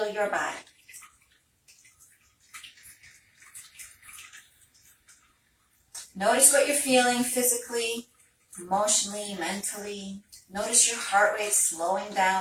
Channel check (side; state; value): both; identical; correlation 1.00